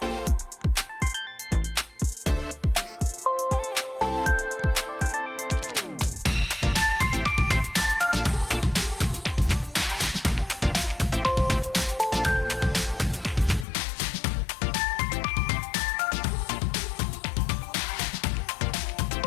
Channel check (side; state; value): right; drops out; at 13.7 s